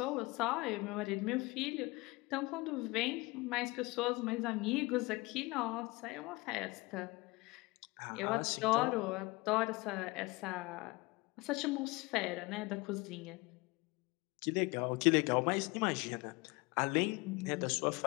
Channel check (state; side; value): quieter; right; 23.8 dB